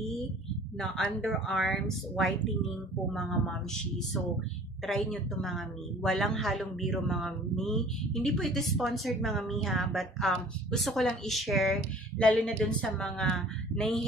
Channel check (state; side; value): normal; both; correlation 0.49